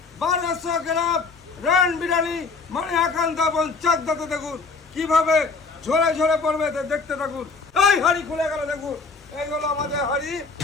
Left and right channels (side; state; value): right; quieter; 4.4 dB